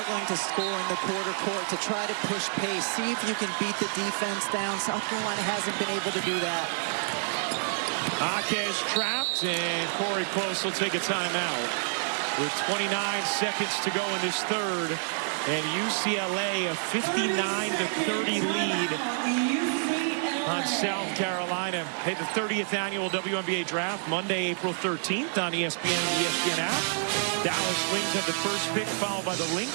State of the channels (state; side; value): silent; left; digital silence